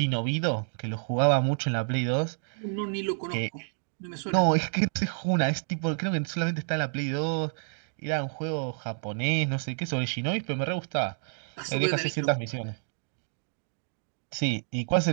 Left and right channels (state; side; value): silent; left; digital silence